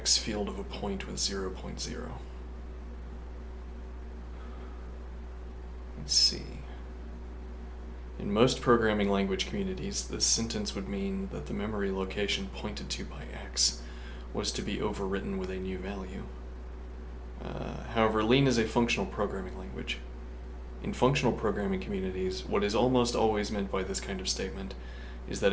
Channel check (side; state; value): both; identical; correlation 1.00